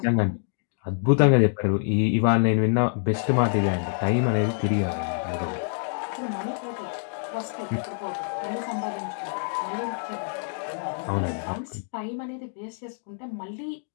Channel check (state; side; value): silent; right; 61 dB below the other